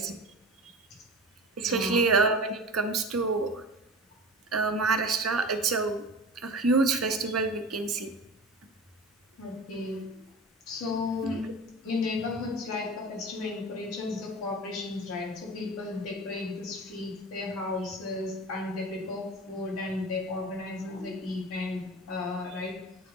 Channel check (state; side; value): normal; both; correlation 0.33